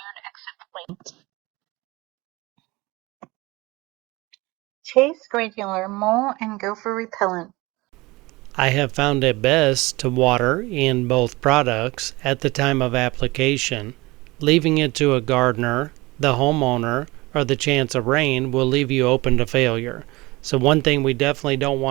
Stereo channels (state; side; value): quieter; left; 22.0 dB